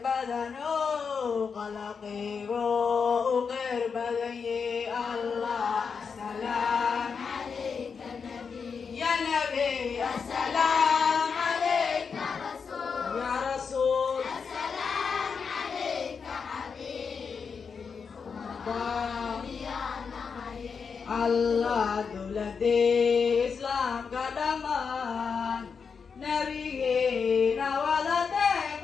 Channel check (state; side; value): quieter; right; 5.8 dB